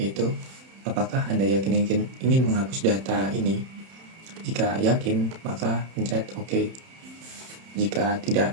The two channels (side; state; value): left; late; 31 ms